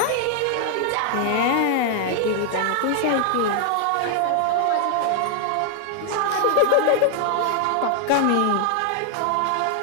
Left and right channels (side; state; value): both; different; correlation 0.00